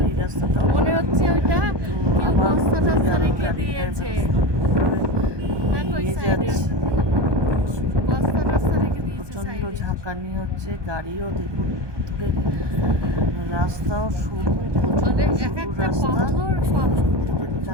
এই রাস্তাটা মনে হচ্ছে ওইটা কেউ আবার বস্তা টস্তা রেখে গাড়ি দিয়েছে। দেখো ওই নিয়ে সাইডে যাচ্ছে। বস্তা টস্তা রেখে দিয়েছে প্রচন্ড সাইডে। ঝাঁকানি হচ্ছে, গাড়িও দেখুন দূরে, রাস্তাও সরু, প্রচন্ড মানে এক সরু একটা রাস্তা, পাথর সব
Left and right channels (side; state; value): left; late; 1.2 ms